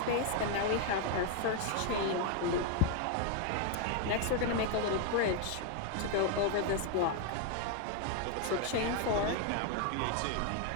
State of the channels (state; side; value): different; both; correlation 0.00